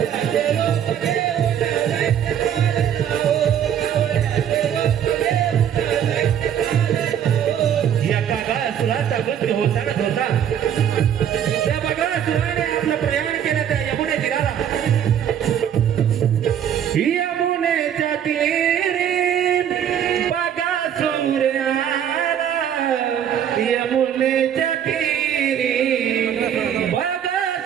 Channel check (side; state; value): left; quieter; 9.3 dB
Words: या कागासुराचा मृत्यू होताच होता. त्या बगासुराने आपलं प्रयाण केलं त्या यमुने तीराला. यमुनेच्या तीरी बगासुर आला, यमुनेच्या तीरी